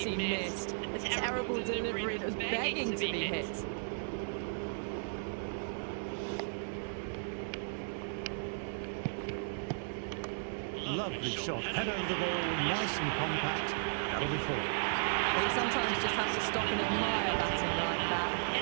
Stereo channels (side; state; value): left; silent; digital silence